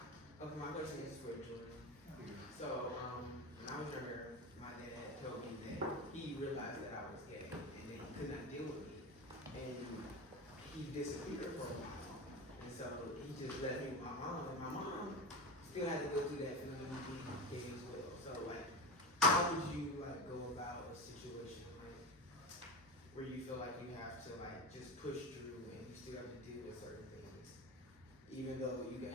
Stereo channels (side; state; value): both; normal; correlation 0.23